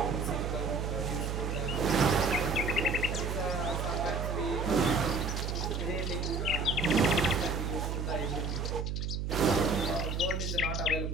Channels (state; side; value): noise; right; hum, 2 dB below the sound